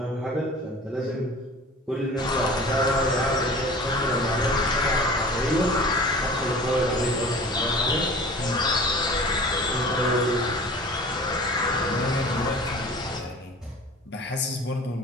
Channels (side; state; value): both; normal; correlation 0.41